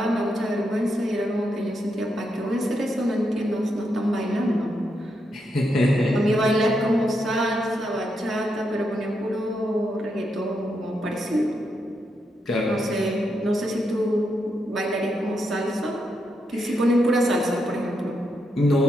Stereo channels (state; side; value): normal; both; correlation 0.82